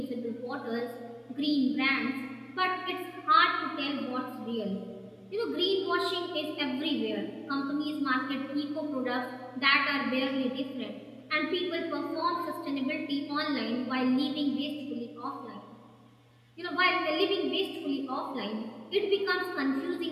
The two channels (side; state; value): both; identical; correlation 1.00